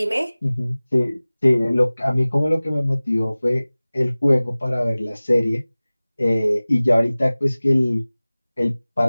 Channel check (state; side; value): inverted; both; correlation -0.99